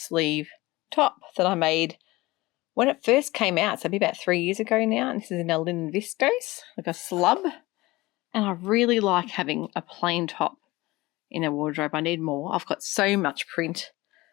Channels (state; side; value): quieter; right; 20.4 dB